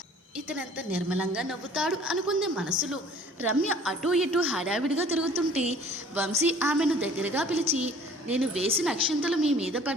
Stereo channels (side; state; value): both; normal; correlation 0.52